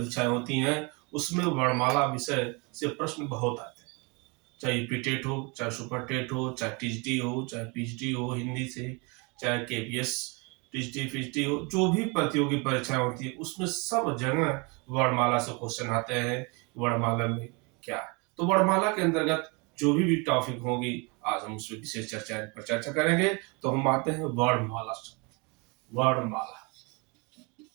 होती हैं, उसमें वर्णमाला विषय से प्रश्न बहुत आते हैं। चाहे यूपी हो, चाहे सुपर टेट हो, चाहे टीजीटी हो, चाहे पीजीटी हो हिंदी से, चाहे केपीएस टीजीटी पीजीटी हो, जो भी प्रतियोगी परीक्षाएं होती है उसमें सब जगह वर्णमाला से क्वेश्चन आते हैं। वर्णमाला में क्या है, तो वर्णमाला के अंतर्गत जो भी टॉपिक होगी आज हम उसमें विशेष चर्चा करेंगे। तो हम आते हैं वर्णमाला शब्द। वर्णमाला,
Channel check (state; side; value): quieter; left; 29.9 dB